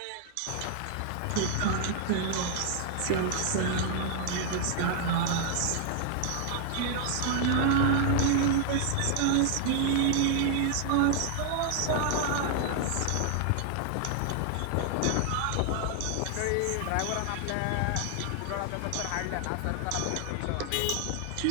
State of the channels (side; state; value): both; different; correlation 0.00